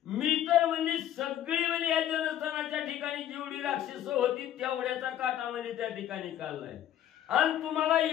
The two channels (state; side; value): quieter; right; 11.2 dB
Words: मी तर म्हणजे सगळी म्हणजे या जनस्थानाच्या ठिकाणी जेवढी राक्षस होती तेवढ्याचा काटा म्हणजे त्या ठिकाणी काढलाय आणि तुम्हाला